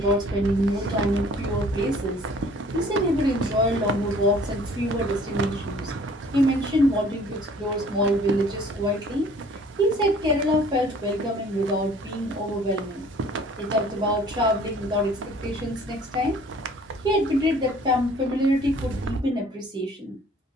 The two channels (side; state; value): both; normal; correlation 0.54